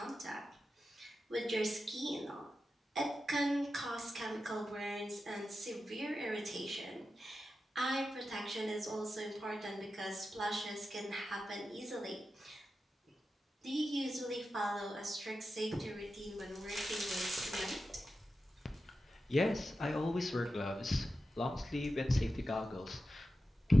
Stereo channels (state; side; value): normal; both; correlation 0.91